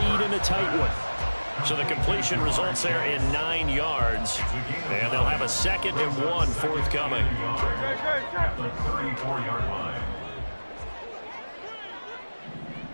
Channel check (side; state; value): both; inverted; correlation -1.00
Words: in a tight one. So the completion results there in 9 yards. And they'll have a 2nd and 1 forthcoming. At the 34-yard line.